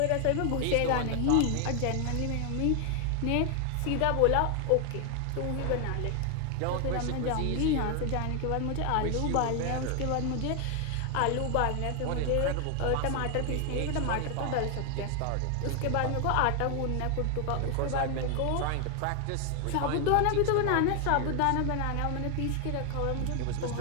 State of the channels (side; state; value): both; different; correlation 0.00